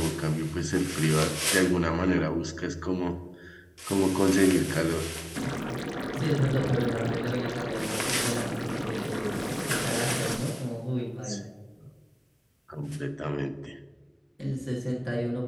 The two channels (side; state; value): both; identical; correlation 1.00